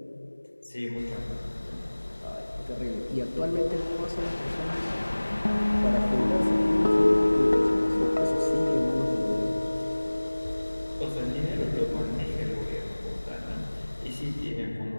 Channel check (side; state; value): both; inverted; correlation -1.00